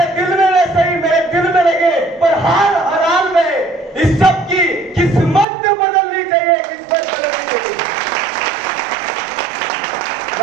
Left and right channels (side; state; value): left; drops out; at 5.5 s